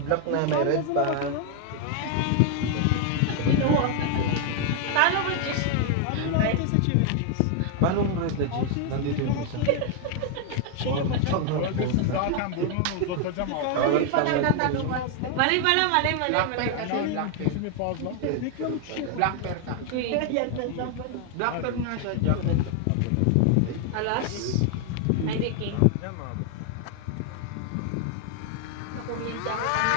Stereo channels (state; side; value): different; both; correlation 0.00